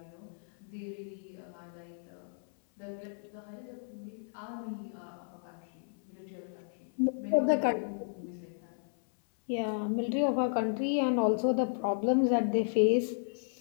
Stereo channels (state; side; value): silent; right; 55 dB below the other